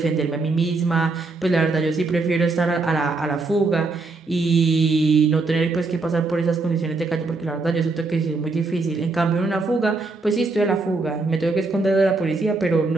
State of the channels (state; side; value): quieter; left; 3.6 dB